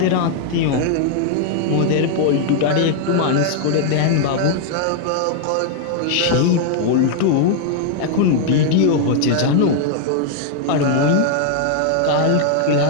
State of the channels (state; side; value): different; both; correlation 0.00